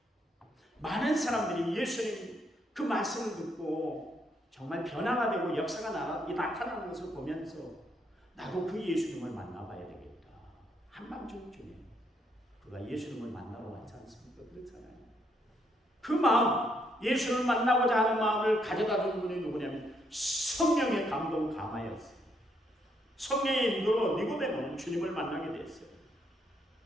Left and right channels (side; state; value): both; normal; correlation 0.74